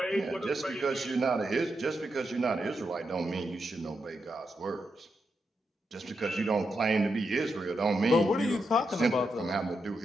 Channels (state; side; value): normal; both; correlation 0.85